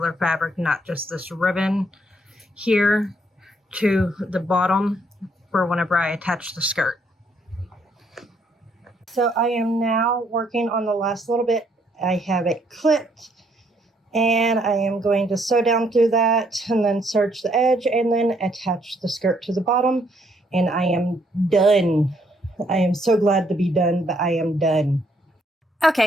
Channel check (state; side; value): normal; both; correlation 0.69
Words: fabric, not just this ribbon here, to the bottom for whenever I attach the skirt. So I am now working on the last little bit. I have it clipped, and I am going to sew down through that and then serge the edge and then attach the skirt to the bottom, and I am done. I am so glad to be done, but I am done.